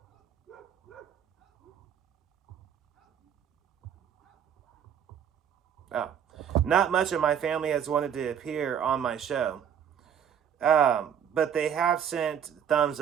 Not much of my family has wanted to appear on my show. But they have sent thumbs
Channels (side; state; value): left; quieter; 8.6 dB